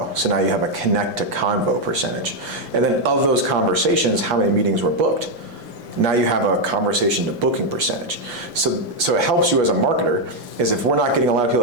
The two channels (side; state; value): left; late; 5.8 ms